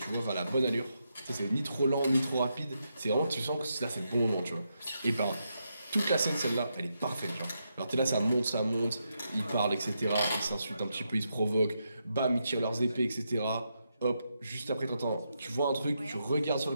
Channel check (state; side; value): inverted; both; correlation -0.83